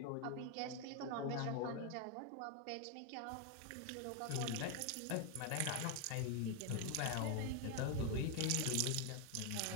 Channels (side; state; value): both; different; correlation 0.01